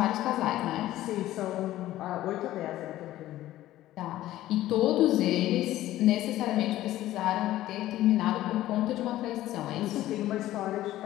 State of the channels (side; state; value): right; quieter; 14.7 dB